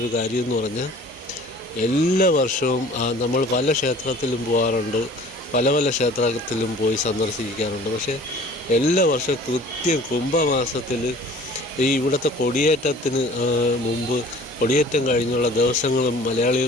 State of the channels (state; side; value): normal; both; correlation 0.47